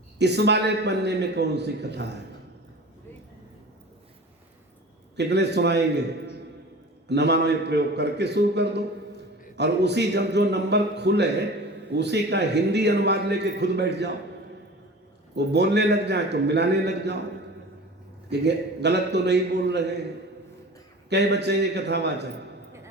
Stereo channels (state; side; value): normal; both; correlation 0.38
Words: इस वाले पन्ने में कौन सी कथा है? कितने सुनाएंगे? न मानो, ये प्रयोग करके शुरू कर दो, और उसी जब जो नंबर खुले उसी का हिंदी अनुवाद लेके खुद बैठ जाओ। वो बोलने लग जाए तो मिलाने लग जाओ कि गलत तो नहीं बोल रहे हैं। कई बचेंगे कथावाचक।